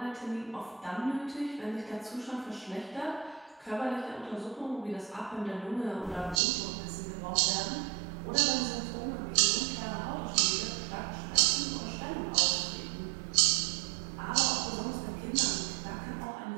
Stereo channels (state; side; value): drops out; left; at 6.4 s